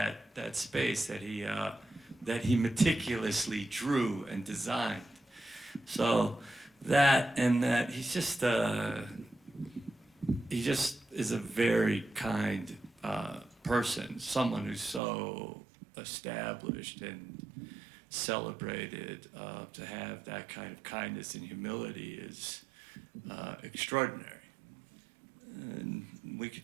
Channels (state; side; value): drops out; left; at 15.0 s